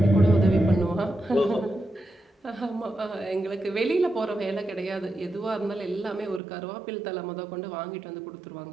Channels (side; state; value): left; drops out; at 6.4 s